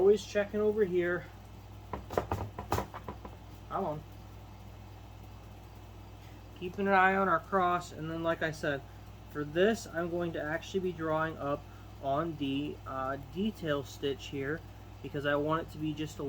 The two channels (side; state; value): both; identical; correlation 1.00